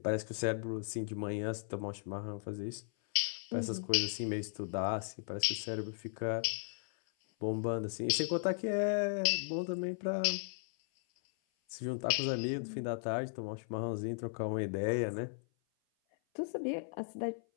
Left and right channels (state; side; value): silent; right; 53 dB below the other